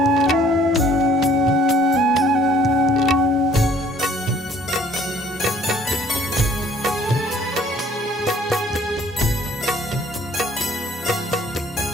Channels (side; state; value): both; normal; correlation 0.57